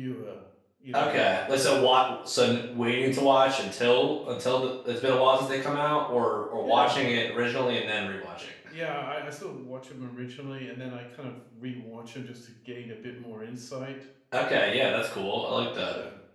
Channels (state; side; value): identical; both; correlation 1.00